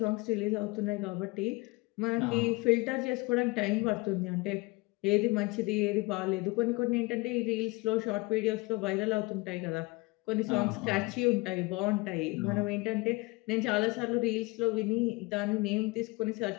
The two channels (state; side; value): quieter; right; 24.3 dB